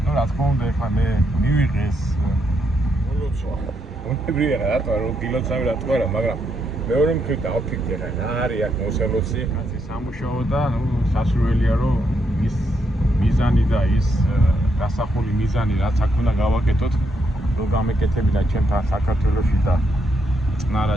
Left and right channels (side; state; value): both; normal; correlation 0.78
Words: რა თქმა უნდა ეხლა მე მივიღე ეს მოლოცვა. უნებრივია რატო რომ გილოცავი რატო არა, მაგრამ მეორე მხრივ დავფიქრე რა არის აქ მოსელოცი, კაცი სამუშაო და სასურველია რომ ის მიზანი და ის დასახული მიზანი რაც აქ უნდა გავაკეთოთ, რომ გამეკეთებინა ჩემთან საქართველოში და